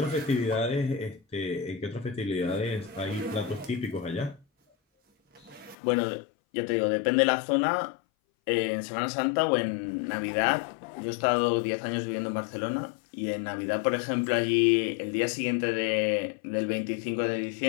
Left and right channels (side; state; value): right; drops out; at 5.8 s